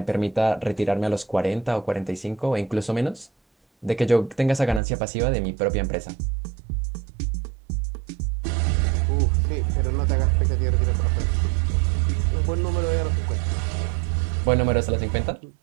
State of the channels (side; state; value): left; drops out; at 4.8 s